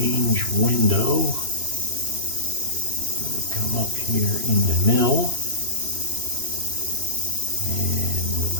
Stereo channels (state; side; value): late; left; 3.0 ms